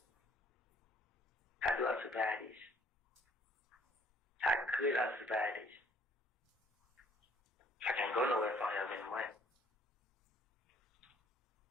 How do I survive this? How could I survive this? I can't go nowhere if I don't have any money.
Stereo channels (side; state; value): both; normal; correlation 0.60